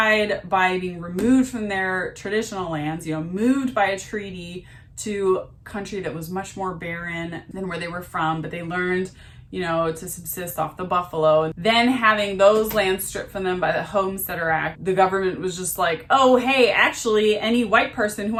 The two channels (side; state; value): both; identical; correlation 1.00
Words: by being removed from their traditional lands, you know, moved by a treaty to a country that was much more barren than where they were from, but they learned, you know, to subsist off the buffalo. Then having those lands stripped from them by the Homesteader Act, the government was just like, oh, hey, actually, any white person who